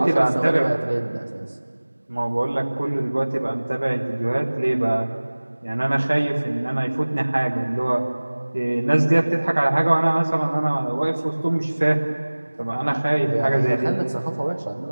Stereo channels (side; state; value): both; inverted; correlation -1.00